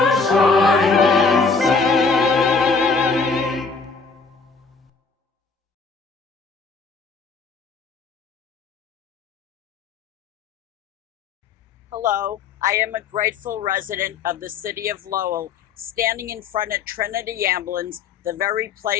Hello, I am a grateful resident of the city of Lowell, standing in front of Trinity Ambulance, the very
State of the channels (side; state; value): right; quieter; 4.8 dB